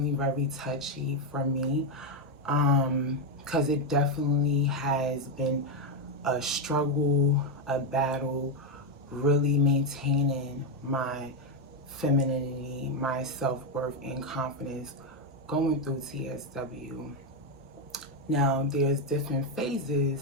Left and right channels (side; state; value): both; normal; correlation 0.05